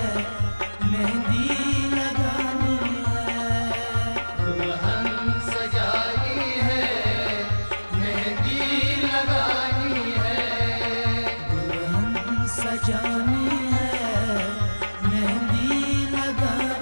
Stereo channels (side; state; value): both; inverted; correlation -1.00